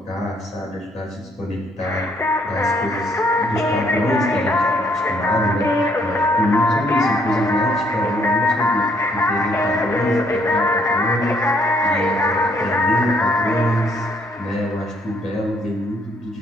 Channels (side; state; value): both; normal; correlation 0.68